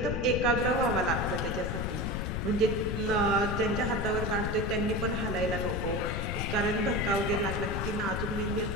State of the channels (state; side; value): noise; left; rumble, 2 dB below the sound